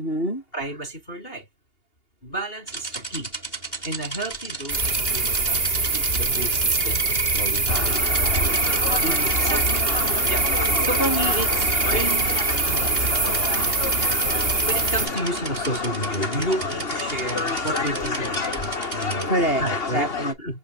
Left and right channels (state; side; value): late; right; 2.8 ms